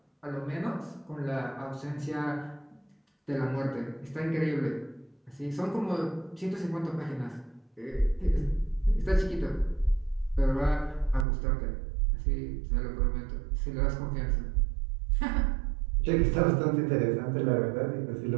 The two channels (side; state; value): left; drops out; at 11.2 s